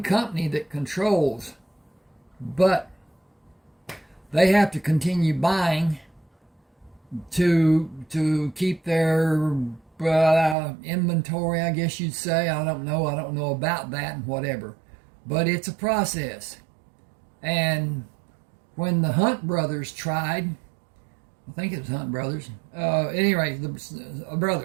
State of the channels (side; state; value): left; drops out; at 10.6 s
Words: company that controls, but they have to continue buying to keep their inventory, I guess you'd say. I don't know about that and whatever. But it's a process. And when the Hunt brothers tried, I think it was Hunt brothers, anyway, the